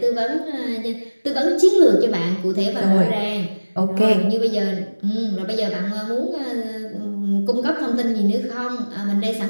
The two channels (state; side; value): inverted; both; correlation -1.00